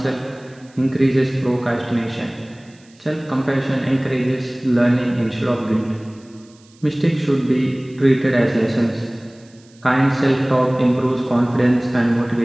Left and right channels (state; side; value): noise; right; hiss, 30 dB below the sound